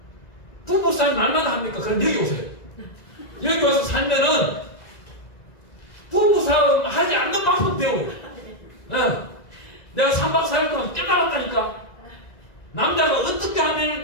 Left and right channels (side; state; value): right; late; 1.9 ms